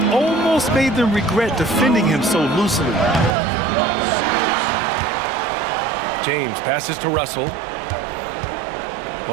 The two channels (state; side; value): drops out; left; at 3.3 s